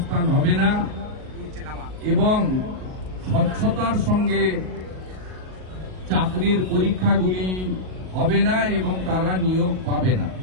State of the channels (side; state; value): left; late; 38 ms